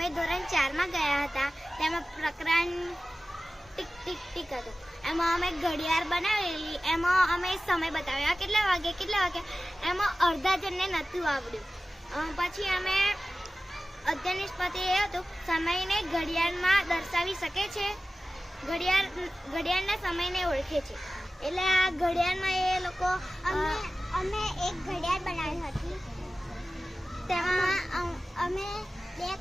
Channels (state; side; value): normal; both; correlation 0.96